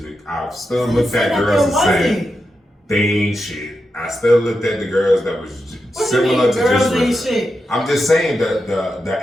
I've still looked at girls and said, they ain't shit. I still looked at the girls that was similar to girls just ain't shit? I'm just saying that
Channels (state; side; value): normal; both; correlation 0.88